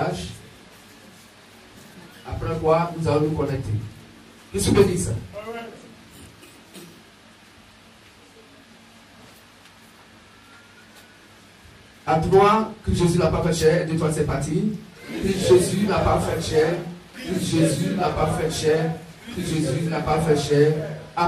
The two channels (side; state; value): both; identical; correlation 1.00